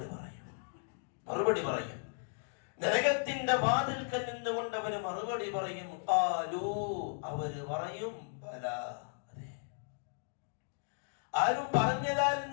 മറുപടി പറയും. നരകത്തിന്റെ വാതിൽക്കൽ നിന്നുകൊണ്ട് അവര് മറുപടി പറയും. അവര് പറയും, ബലാ, അതെ. ആരും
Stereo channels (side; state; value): right; silent; digital silence